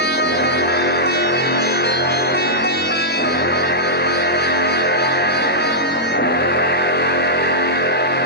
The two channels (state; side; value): normal; both; correlation -0.11